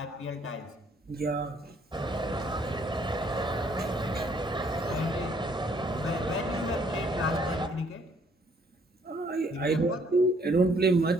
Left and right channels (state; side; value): normal; both; correlation 0.65